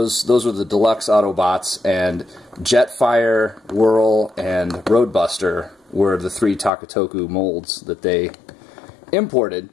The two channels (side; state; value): right; drops out; at 6.7 s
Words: were the deluxe Autobots, and Jetfire, Whirl, and Roadbuster were the 3 Takatoku molds that they imported,